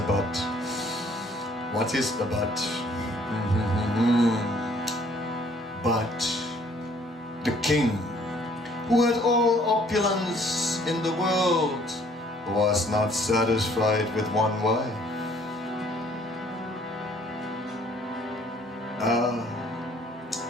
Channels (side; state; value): both; normal; correlation 0.60